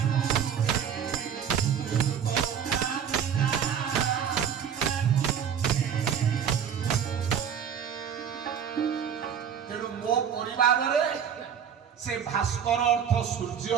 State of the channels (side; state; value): left; quieter; 8.1 dB